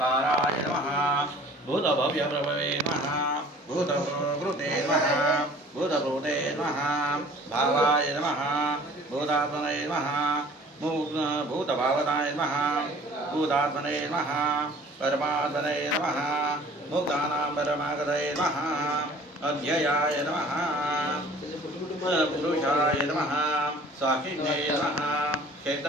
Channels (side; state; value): both; normal; correlation 0.49